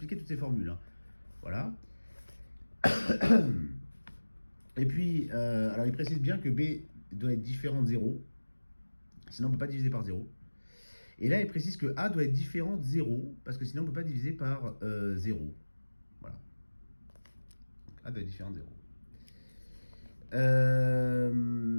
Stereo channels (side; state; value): both; inverted; correlation -1.00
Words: toutes ces formules. Hein. Voilà. Et puis, alors il précise bien que B doit être différent de 0. Sinon on ne peut pas diviser par 0. Et là il précise que A doit être différent de 0. Parce que sinon on ne peut pas diviser par 0. Voilà. Donc A doit être différent de 0.